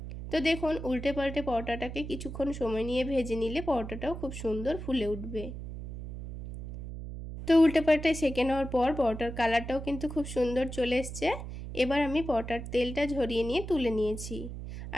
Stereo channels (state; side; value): noise; right; hum, 9 dB below the sound